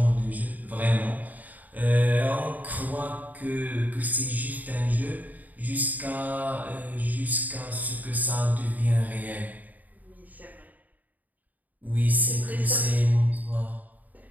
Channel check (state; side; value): late; left; 0.079 ms